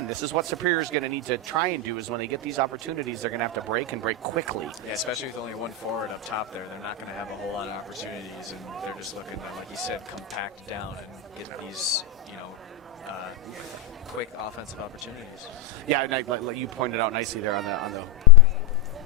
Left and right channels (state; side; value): quieter; right; 4.3 dB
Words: this is what Superior is going to need to try and do, is when they get these opportunities, they're going to have to break and break quickly. Yeah, especially with only one forward up top there. They're not going to have a whole lot of opportunities, and they're just looking to, like you said, compact down and get these, quick offensive opportunities. Yeah, and like you pointed out nicely there on the